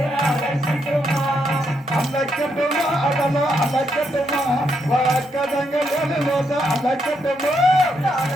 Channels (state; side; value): normal; both; correlation 0.78